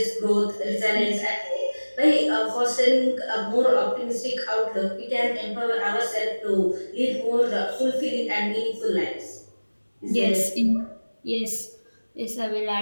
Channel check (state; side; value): inverted; both; correlation -1.00